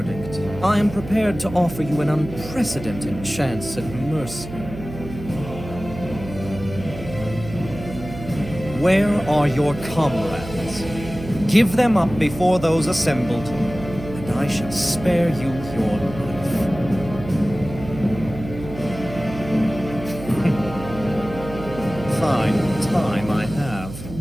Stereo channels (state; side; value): noise; right; hum, 12 dB below the sound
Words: I am prepared to offer you an unprecedented chance at mercy. Where are your comrades? Give them up before those assembled, and I shall spare you your life. Fine time I have.